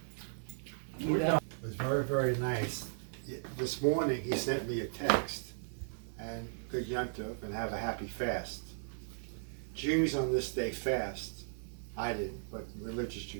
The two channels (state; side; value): silent; left; digital silence